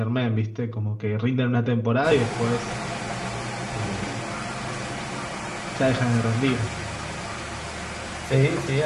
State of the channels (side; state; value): both; identical; correlation 1.00